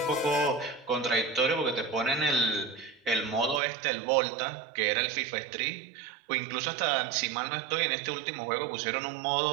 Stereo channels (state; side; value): drops out; left; at 3.6 s